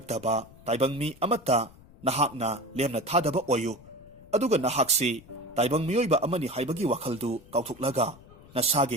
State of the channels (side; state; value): left; noise; rumble, 23 dB below the sound